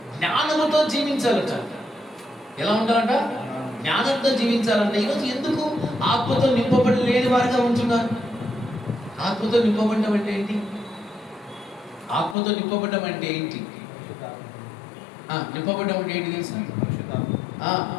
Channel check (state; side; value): drops out; right; at 12.4 s